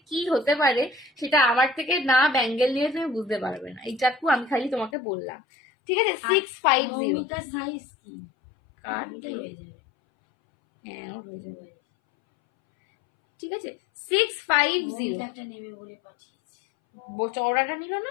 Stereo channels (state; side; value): drops out; right; at 4.9 s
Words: কি হতে পারে সেটা আমার থেকে না ব্যাঙ্গেল নিয়ে তুমি বুঝতে পারবে না, এইটাকু আমি খালি তোমাকে বললাম, ঠিক আছে। 650 সাইজ কি কার হ্যাঁ হয়ে যাবে, ঠিক আছে। 650 একটা নেবে বলে পাঠিয়েছি, চওড়াটা নিল